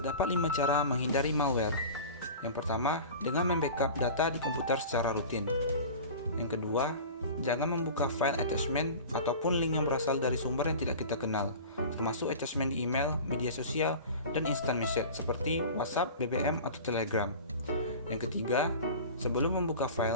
5 cara menghindari malware. Yang pertama, dengan membackup data di komputer secara rutin. Yang kedua, jangan membuka file attachment ataupun link yang berasal dari sumber yang tidak kita kenal, termasuk attachment di email, media sosial, dan instant message seperti WhatsApp, BBM, atau Telegram. Yang ketiga, sebelum membuka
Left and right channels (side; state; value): both; inverted; correlation -0.37